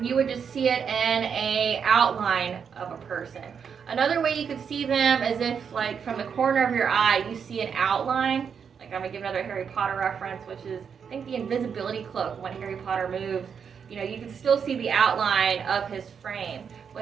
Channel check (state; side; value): quieter; left; 6.9 dB